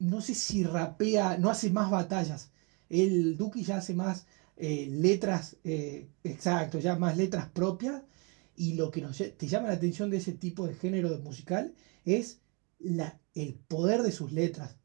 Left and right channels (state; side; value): quieter; left; 32.0 dB